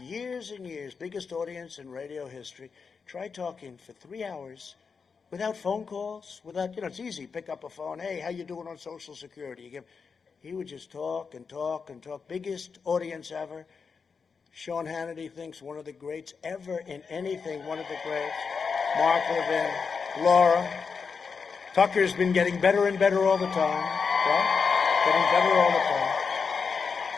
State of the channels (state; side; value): quieter; right; 5.5 dB